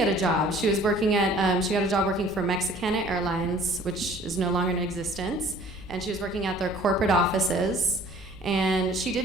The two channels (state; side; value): noise; right; hum, 20 dB below the sound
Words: a job. She was working at, she got a job working for Mexicana Airlines, which is no longer in existence. And she was working at their corporate offices. And she